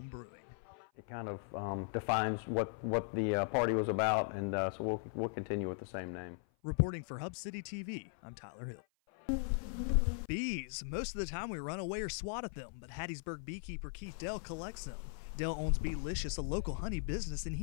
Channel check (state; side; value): silent; right; 52 dB below the other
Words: brewing. It kind of defines what the party was about, and so we'll continue with the same name. Reporting for Hub City TV, I'm Tyler Hill. Bees. Most of the time we run away or swat at them, but Hattiesburg beekeeper Keith Dell collects them. Dell owns Beelicious, a local honey business, and